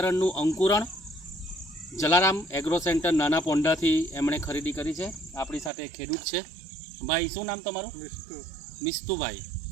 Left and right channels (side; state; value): left; drops out; at 5.7 s